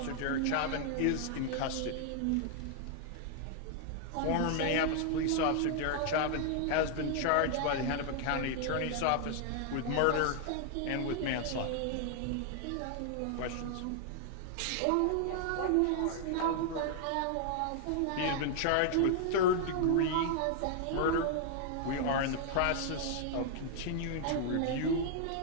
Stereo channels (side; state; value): both; different; correlation 0.00